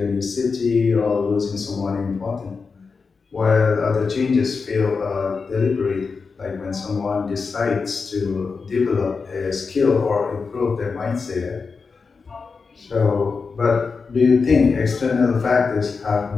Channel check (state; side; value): quieter; right; 4.9 dB